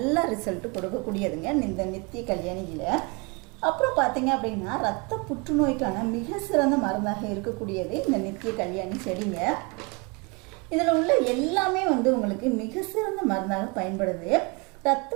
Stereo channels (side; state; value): left; quieter; 29.9 dB